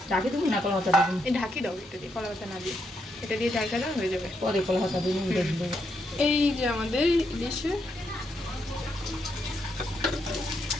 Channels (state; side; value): normal; both; correlation 0.79